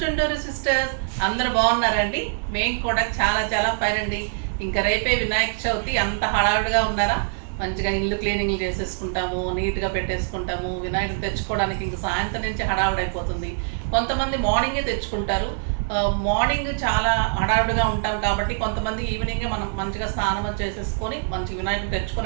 చుంటూరు sisters. అందరూ బాగున్నారండి? మేము కూడా చాలా చాలా ఫైన్ అండి. ఇంకా రేపే వినాయక చవితి. అంత హడావుడిగా ఉన్నారా? మంచిగా ఇల్లు క్లీనింగ్ చేసేసుకుంటాము, నీట్గా పెట్టేసుకుంటాము. వినాయకుడు తెచ్చుకోవడానికి ఇంక సాయంత్రం నుంచి హడావుడైపోతుంది. కొంతమంది మార్నింగే తెచ్చుకుంటారు. మార్నింగ్ చాలా హడావుడిగా ఉంటాం కాబట్టి కొంతమంది ఈవినింగే మనం మంచిగా స్నానం చేసేసుకొని మంచి వినాయకుడు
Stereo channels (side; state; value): left; silent; digital silence